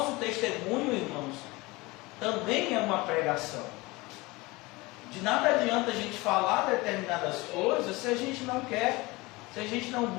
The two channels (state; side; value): quieter; right; 22.8 dB